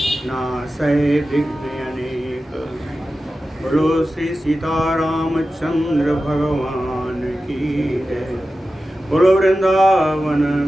नासै विघ्न अनेक। बोलो श्री सीतारामचंद्र भगवान की जय। बोलो वृंदावन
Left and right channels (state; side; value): normal; both; correlation 0.93